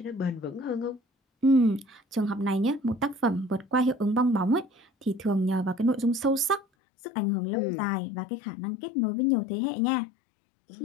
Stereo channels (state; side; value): drops out; right; at 6.6 s